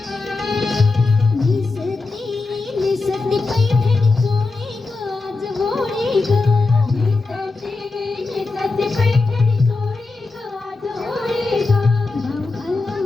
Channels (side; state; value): right; quieter; 3.7 dB